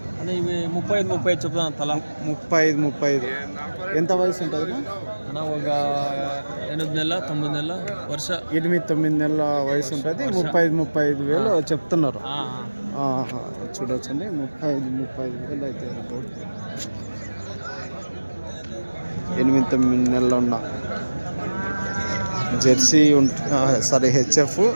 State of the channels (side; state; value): both; inverted; correlation -1.00